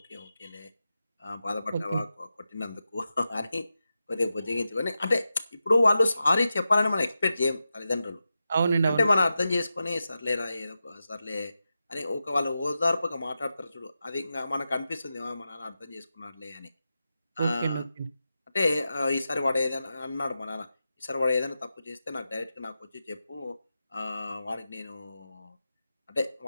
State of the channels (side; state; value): both; inverted; correlation -0.91